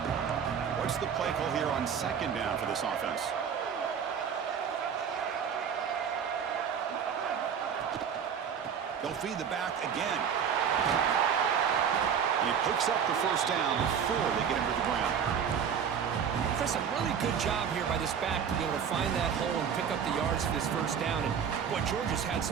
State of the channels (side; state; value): left; quieter; 7.5 dB